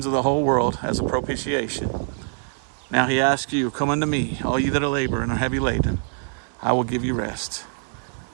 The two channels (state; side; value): silent; left; digital silence